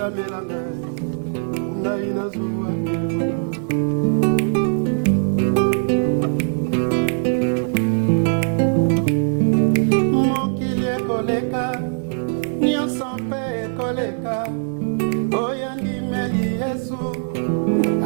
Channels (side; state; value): left; silent; digital silence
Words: melanga ngai nazwa nde bomoi mokili ekoleka nyonso mpe ekoleka oyo ndimeli Yesu